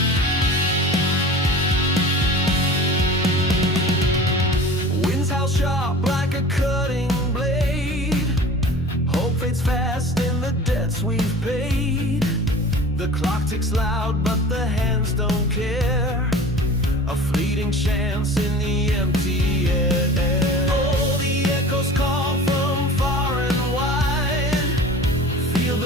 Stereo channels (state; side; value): normal; both; correlation 0.40